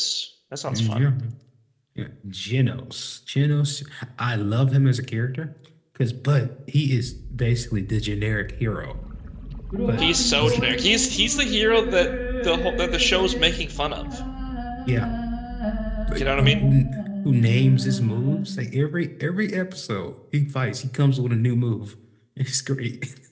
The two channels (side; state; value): both; identical; correlation 1.00